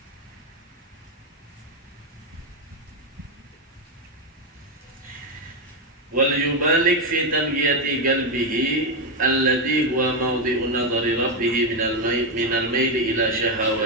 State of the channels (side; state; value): both; normal; correlation 0.06